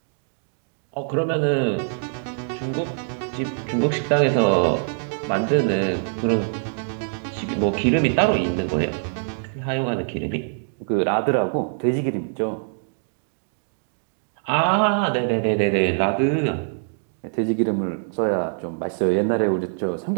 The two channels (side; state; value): left; silent; digital silence